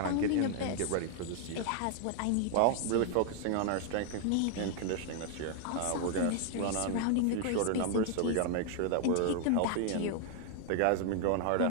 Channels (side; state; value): both; different; correlation 0.00